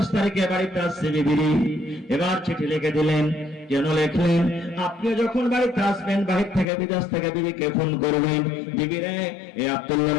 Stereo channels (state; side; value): drops out; right; at 6.7 s